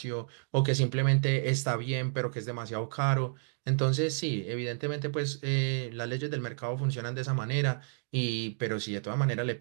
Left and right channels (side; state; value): left; silent; digital silence